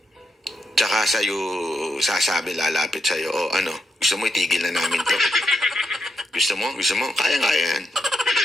tsaka sa'yo sasabi, lalapit sa'yo, gusto mo itigil na namin to. Gusto mo? Kaya yan.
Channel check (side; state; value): both; normal; correlation 0.82